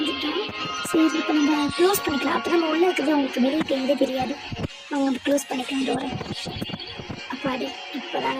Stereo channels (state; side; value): identical; both; correlation 1.00